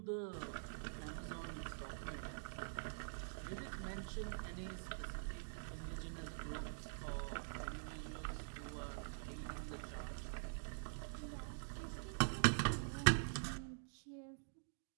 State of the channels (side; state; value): left; silent; digital silence